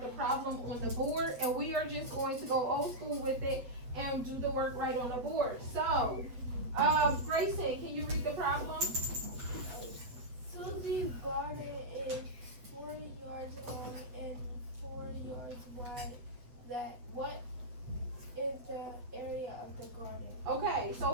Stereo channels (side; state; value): left; late; 8.5 ms